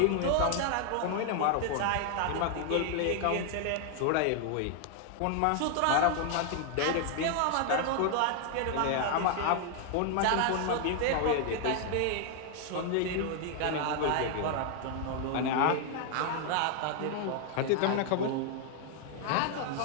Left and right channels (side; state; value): both; different; correlation 0.00